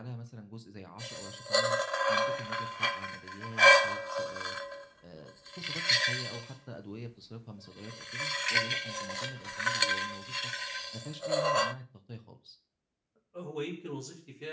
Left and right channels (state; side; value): identical; both; correlation 1.00